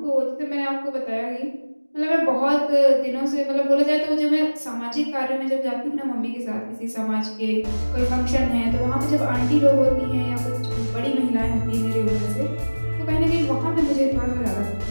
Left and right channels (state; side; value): inverted; both; correlation -1.00